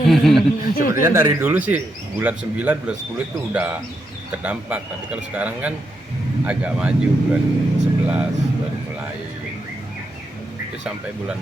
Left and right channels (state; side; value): normal; both; correlation 0.82